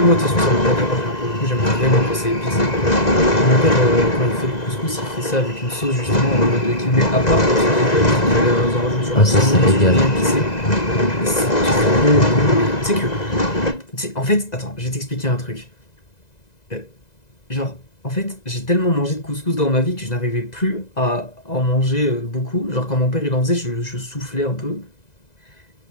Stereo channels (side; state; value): right; late; 2.0 ms